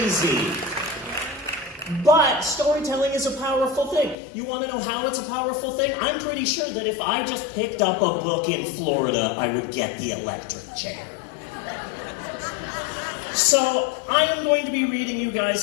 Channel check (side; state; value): right; drops out; at 4.2 s